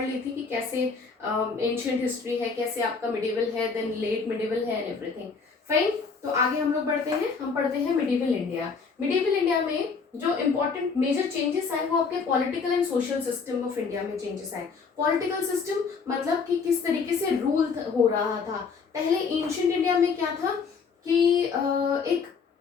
ली थी कि कैसे एंशियंट हिस्ट्री है, कैसे आपका मिडिवल है, देन लेट मिडिवल है एंड एवरीथिंग। फाइन, तो आगे हम लोग बढ़ते हैं। हम पढ़ते हैं मिडिवल इंडिया। मिडिवल इंडिया में जो इंपॉर्टेंट मेजर चेंजेस आए वो आपके political and social system of India में चेंजेस आए। पॉलिटिकल सिस्टम मतलब कि किस तरीके से रूल हो रहा था। पहले एंशियंट इंडिया में क्या था कि एक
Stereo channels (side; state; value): right; quieter; 5.2 dB